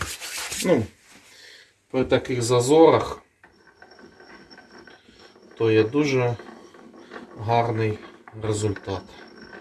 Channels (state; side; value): identical; both; correlation 1.00